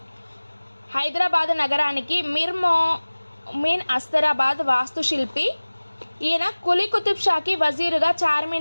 హైదరాబాద్ నగరానికి మిర్మోమిన్ అస్తరాబాద్ వాస్తుశిల్పి. ఈయన కులీ కుతుబ్ షాకి వజీరుగా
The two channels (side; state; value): both; inverted; correlation -1.00